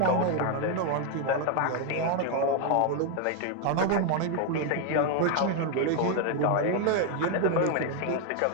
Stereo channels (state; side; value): different; both; correlation 0.01